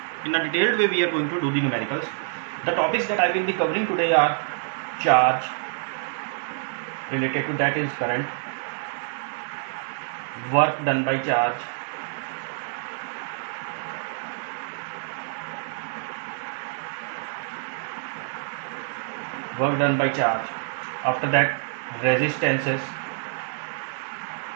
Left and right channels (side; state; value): left; silent; 61 dB below the other